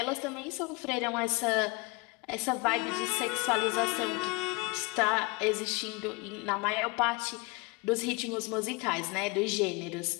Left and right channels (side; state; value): right; quieter; 26.7 dB